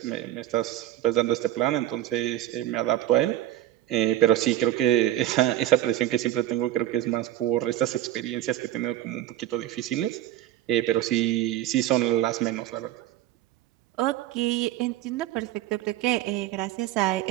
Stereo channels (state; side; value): quieter; left; 13.4 dB